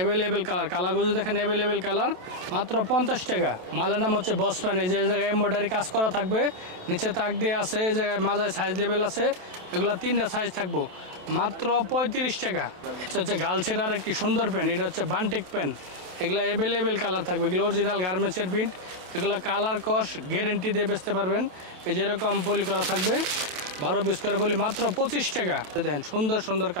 কালার, কালারগুলো দেখেন অ্যাভেলেবেল কালার, মাত্র 50 টাকা। মালের নাম হচ্ছে বস প্যান, এই যে জায়গায় এমব্রয়ডারি কাজ করা থাকবে, নিচে তাক দিয়ে আছে, এই জায়গায় মাজায় সাইজ লেভেল আছে। এগুলো 3টা সাইজ থাকবো, মাত্র 35 টাকা। এটা হচ্ছে গার্লসের আর একটি সুন্দর প্যান্ট, এটা হচ্ছে বান্টেক প্যান্ট। এগুলো অ্যাভেলেবেল কালার থাকবে, এগুলো অরিজিনাল গার্মেন্টসের প্রিন্ট, এগুলো কালার কস গ্যারেন্টি দিয়ে বেচতে পারবেন। এই যেরকম পলি করা থাকবে 12 পিস করে বলি মাত্র 25 টাকা। দেখেন সুন্দর সুন্দর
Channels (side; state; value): left; late; 27 ms